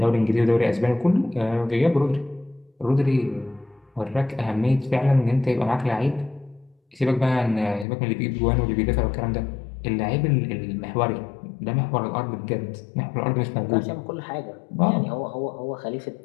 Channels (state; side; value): drops out; right; at 7.9 s